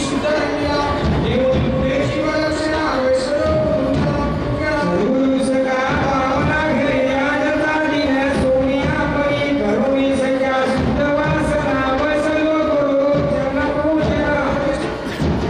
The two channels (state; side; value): identical; both; correlation 1.00